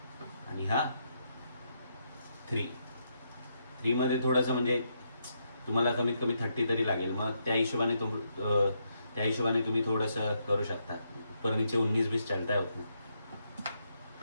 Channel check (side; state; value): both; inverted; correlation -0.79